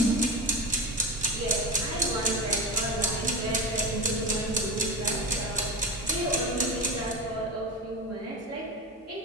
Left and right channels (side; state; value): both; normal; correlation 0.24